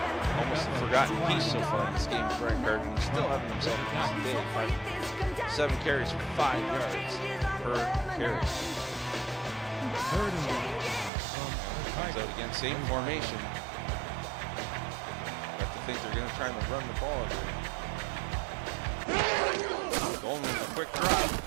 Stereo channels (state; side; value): drops out; left; at 11.1 s